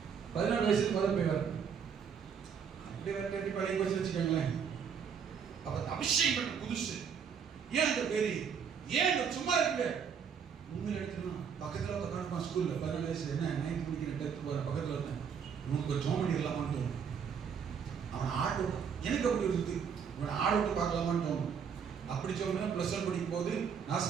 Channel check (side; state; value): left; quieter; 7.0 dB